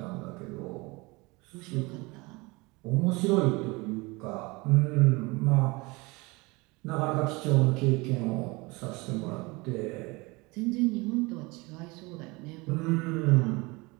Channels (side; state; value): left; quieter; 25.0 dB